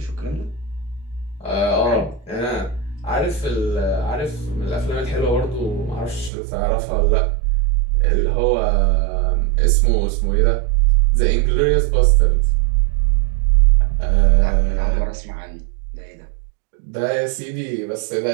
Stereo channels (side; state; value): left; drops out; at 6.3 s